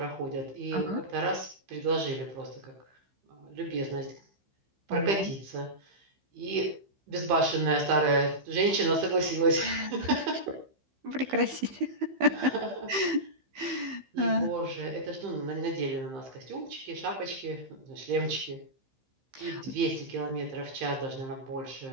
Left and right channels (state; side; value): late; left; 15 ms